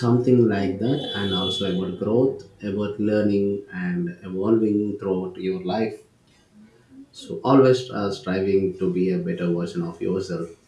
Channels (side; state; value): both; identical; correlation 1.00